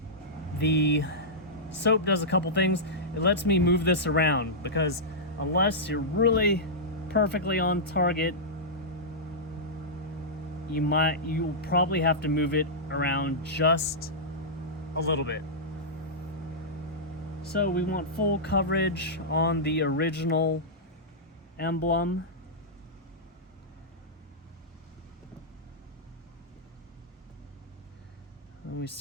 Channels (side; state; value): both; normal; correlation -0.12